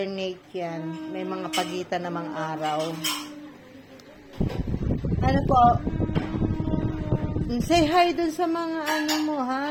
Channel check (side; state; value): both; identical; correlation 1.00